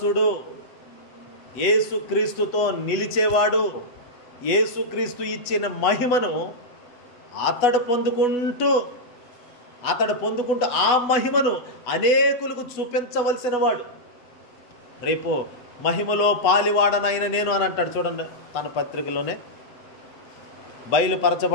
యేసుక్రీస్తుతో నిలిచేవాడు. యేసుక్రీస్తు ఇచ్చిన మహిమను అతడు పొందుకుంటూ ఆ మహిమను అనేకులకు చూపించవలసిన వాడు. రేపు మహిమలో పాలివాడనైన నేను అని అంటాడు చూడండి తన పత్రికలోనే.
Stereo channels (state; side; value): late; right; 8.1 ms